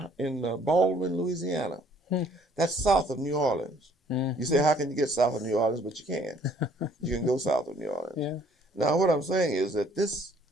in Baldwin, Louisiana. That's south of New Orleans. Mm-hmm. You say, how can you get south of New Orleans? But you can. You can go south of New Orleans. Yeah. Now, what I'm saying is that this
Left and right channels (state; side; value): normal; both; correlation 0.60